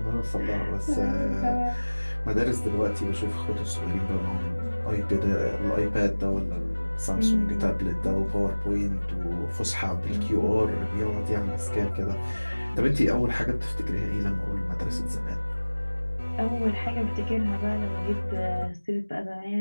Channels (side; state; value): both; inverted; correlation -1.00